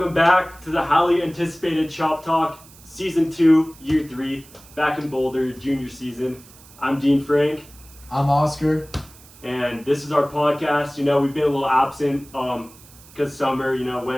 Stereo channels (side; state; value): right; noise; hiss, 23 dB below the sound